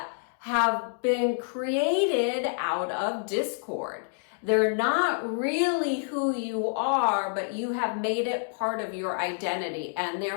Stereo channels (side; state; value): right; silent; digital silence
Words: have been created out of discord. They're not really who you are, but you have made it part of your identity. And